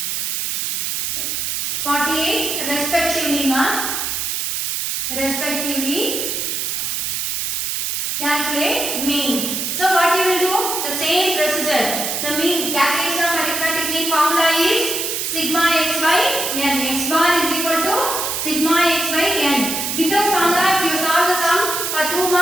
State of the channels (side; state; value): right; noise; hiss, 1 dB below the sound